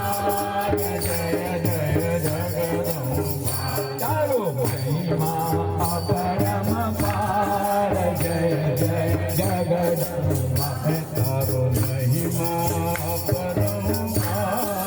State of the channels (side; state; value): both; identical; correlation 1.00